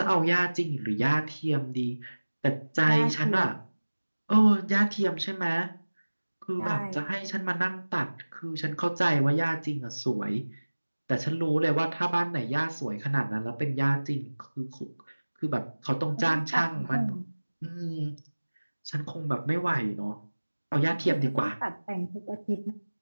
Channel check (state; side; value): inverted; both; correlation -1.00